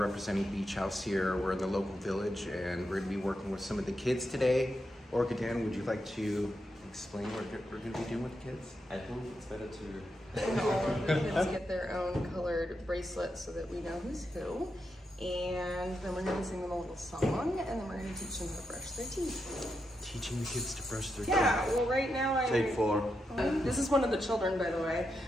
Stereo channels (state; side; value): normal; both; correlation 0.85